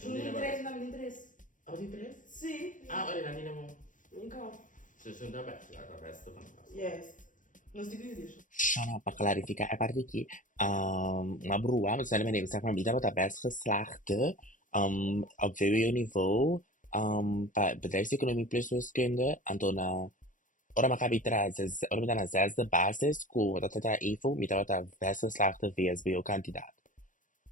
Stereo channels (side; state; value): right; late; 0.38 ms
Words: Junto de 3, não me de 3. Ah, tem 3? Sim. Ah, olha, não é bom. Então. Você junta best, a best tá fantástico. Yes. Nos degrees. Só para clarificar a parte aqui, uma broa, mas também deve ser uma vida para best geslaagde, op VWO-niveau, bedrijfseconomie plus wiskunde, Antona, ora maar heb ora met een zesde basis, dat het daar even, met dat best geslaagde VSBO-kandidaat.